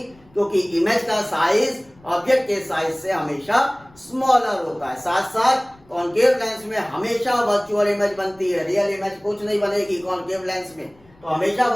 क्योंकि इमेज का साइज ऑब्जेक्ट के साइज से हमेशा स्मॉलर होता है। साथ साथ कॉन्केव लेंस में हमेशा वर्चुअल इमेज बनती है, रियल इमेज कुछ नहीं बनेगी कॉन्केव लेंस में, तो हमेशा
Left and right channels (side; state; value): left; noise; rumble, 29 dB below the sound